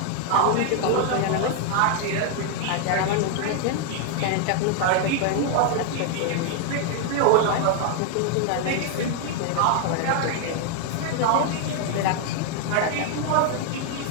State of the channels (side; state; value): both; different; correlation 0.00